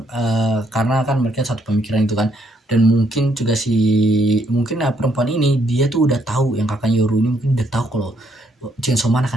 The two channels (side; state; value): both; normal; correlation 0.72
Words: karena kan mereka satu pemikiran itu kan. Dan mungkin juga mungkin perempuan ini dia tuh udah tahu, yang kakaknya Yoru ini mungkin udah tahu kalau Chainsaw Man